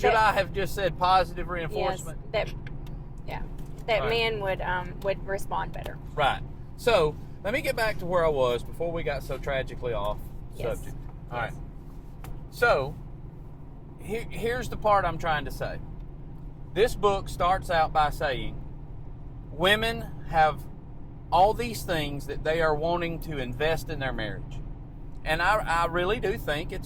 I have just said positive reinforcement? Yes, that men would respond better. Right. So let me get back to where I was before we got so tragically off subject. All right. So here's the part I'm trying to say. This book starts out by saying women have all these things that they are wanting to invest in their marriage. And I really do think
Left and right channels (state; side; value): identical; both; correlation 1.00